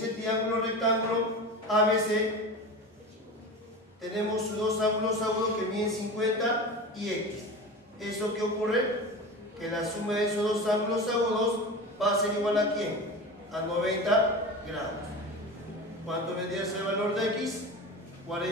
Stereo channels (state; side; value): normal; both; correlation 0.30